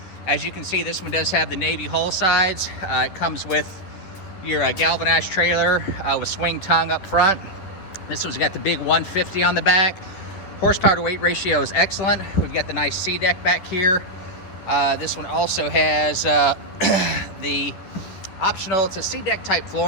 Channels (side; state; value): right; late; 11 ms